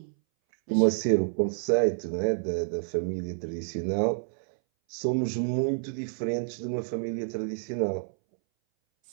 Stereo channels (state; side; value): silent; left; 59 dB below the other